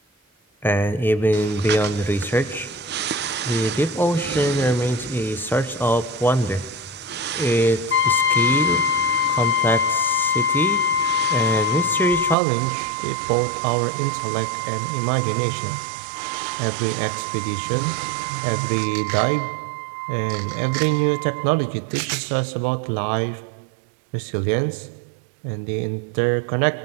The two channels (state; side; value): drops out; left; at 12.4 s